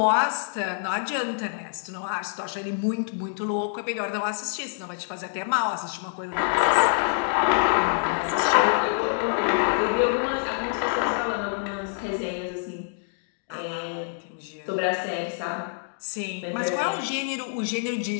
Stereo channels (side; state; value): right; silent; digital silence